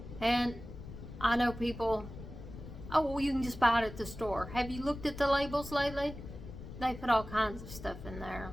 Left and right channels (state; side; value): noise; left; rumble, 12 dB below the sound